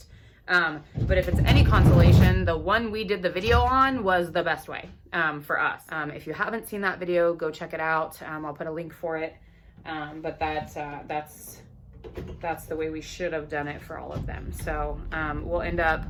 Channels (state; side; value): identical; both; correlation 1.00